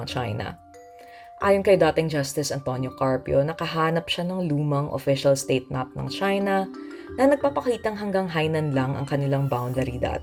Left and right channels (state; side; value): identical; both; correlation 1.00